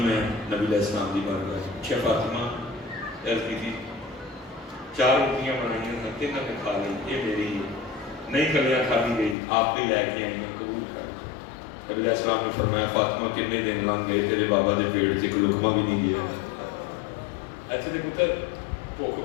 نبی علیہ السلام دی بارگاہ اچھا فاطمہ عرض کی تھی 4 روٹیاں بنائی ہیں تینوں نے کھا لی یہ میری نہیں کلیاں کھا دی گئی آپ بھی لے کے آئی ہیں قبول کر. نبی علیہ السلام نے فرمایا فاطمہ کتنے دن لنگ گئے تیرے بابا دے پیٹ سے کوئی لقمہ بھی نہیں گیا. ایسے دے پتر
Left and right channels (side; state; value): right; drops out; at 9.3 s